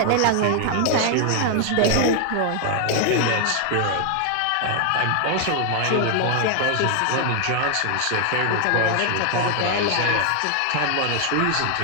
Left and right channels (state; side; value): different; both; correlation 0.00